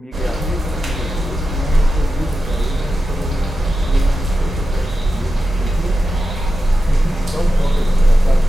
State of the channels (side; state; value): both; normal; correlation 0.91